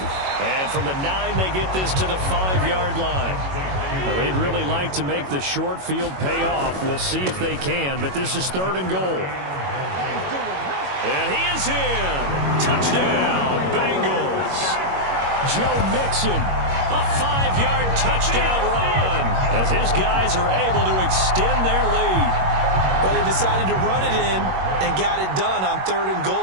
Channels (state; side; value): late; left; 21 ms